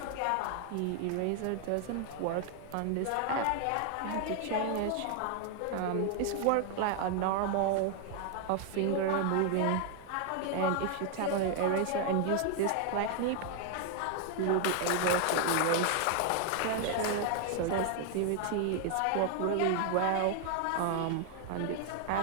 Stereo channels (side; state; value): both; different; correlation 0.00